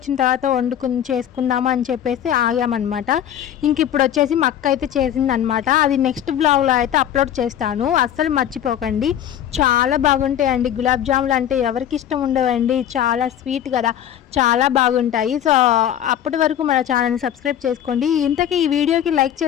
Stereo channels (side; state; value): right; quieter; 10.4 dB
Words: తర్వాత చేసుకుందాము అని చెప్పేసి ఆగామన్నమాట. ఇంక ఇప్పుడు వచ్చేసి మా అక్క అయితే చేసిందనమాట. అది నెక్స్ట్ బ్లాగ్లో అయితే అప్లోడ్ చేస్తాను, అస్సలు మర్చిపోకండి. చాలా బాగుంటాయండి గులాబ్ జాములు అంటే ఎవరికి ఇష్టం ఉండదండి, చాలా స్వీట్ కదా, చాలా బాగుంటాయి. సో అప్పటి వరకు మన ఛానల్ని సబ్స్క్రైబ్ చేసుకోండి. ఇంతకీ ఈ వీడియోకి లైక్